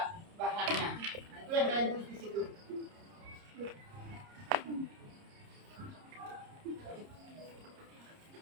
bahannya. Nah, itu yang kalian tulis di situ.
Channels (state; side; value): late; left; 30 ms